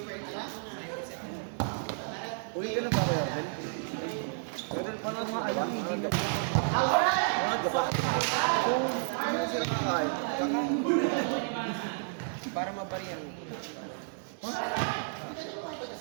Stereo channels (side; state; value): left; silent; digital silence